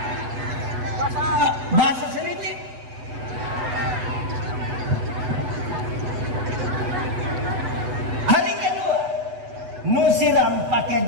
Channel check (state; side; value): late; left; 8.1 ms